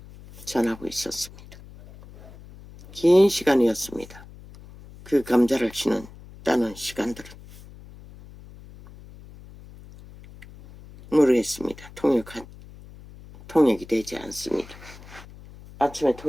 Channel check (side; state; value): left; noise; hum, 19 dB below the sound